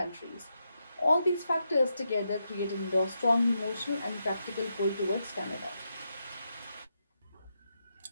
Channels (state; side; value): inverted; both; correlation -0.84